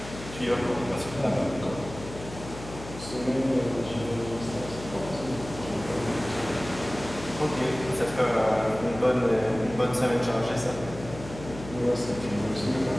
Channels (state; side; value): noise; left; hum, 13 dB below the sound